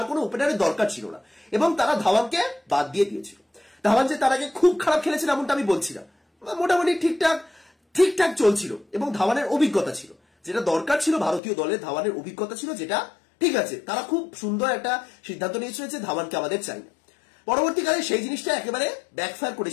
কোনো ওপেনারের দরকার ছিল না, এবং তারা ধাওয়ানকে বাদ দিয়ে দিয়েছিল। ধাওয়ান যে তার আগে খুব খারাপ খেলেছিল এমনটা আমি বলছি না, মোটামুটি ঠিকঠাক চলছিল, এবং ধাওয়ানের অভিজ্ঞতা ছিল, যেটা দরকার ছিল ভারতীয় দলের, ধাওয়ানের অভিজ্ঞতা ছিল, যেটা ঠিক আছে। তারা খুব সুন্দর একটা সিদ্ধান্ত নিয়েছিল যে ধাওয়ানকে আমাদের চাই না। পরবর্তীকালে সেই জিনিসটা একেবারে ব্যাকফায়ার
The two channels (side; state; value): right; drops out; at 11.4 s